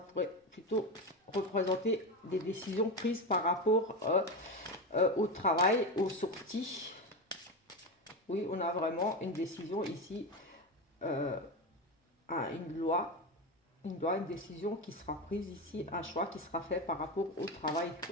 plutôt représenter des décisions prises par rapport au travail, aux sorties. Oui, on a vraiment une décision ici, euh, une loi, une décision qui sera prise ici, un choix qui sera fait par rapport au travail,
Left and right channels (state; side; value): normal; both; correlation 0.17